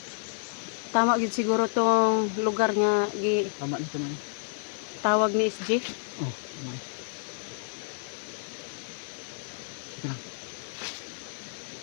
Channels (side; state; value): right; silent; digital silence